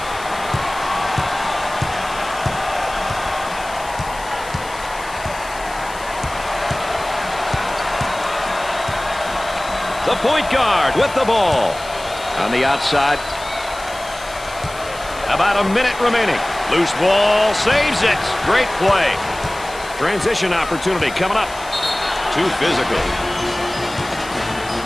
The point guard with the ball. On the outside. About a minute remaining. Loose ball, saves it. Great play. Transition opportunity coming up. Too physical.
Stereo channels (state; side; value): noise; left; hiss, 17 dB below the sound